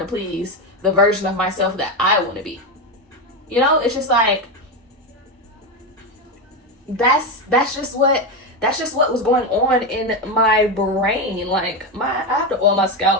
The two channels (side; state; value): both; normal; correlation 0.13